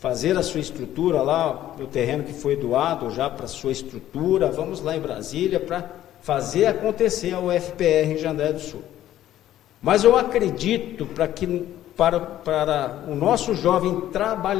a sua estrutura lá, o terreno que foi doado já para a sua estrutura, vamos lá em Brasília para fazer acontecer a UFPR em Jandaia do Sul. Mas eu acredito para o nosso jovem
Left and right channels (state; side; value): quieter; right; 12.8 dB